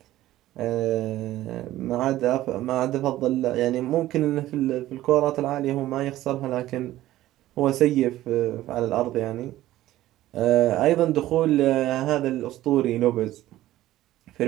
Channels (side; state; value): left; quieter; 14.9 dB